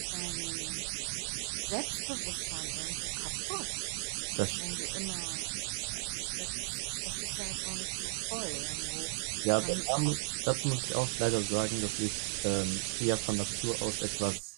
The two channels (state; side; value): silent; left; 54 dB below the other